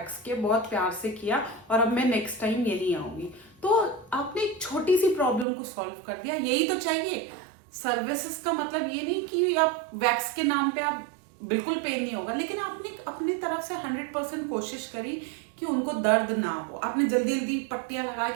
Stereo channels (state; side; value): drops out; left; at 5.5 s